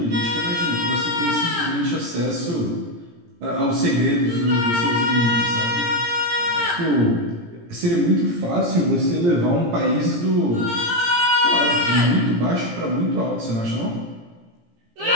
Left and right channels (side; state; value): left; late; 17 ms